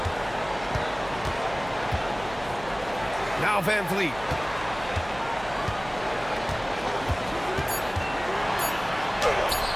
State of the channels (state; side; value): noise; right; hum, 16 dB below the sound